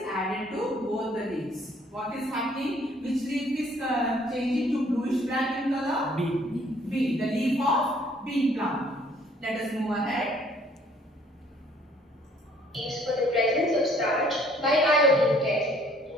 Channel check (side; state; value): both; normal; correlation 0.60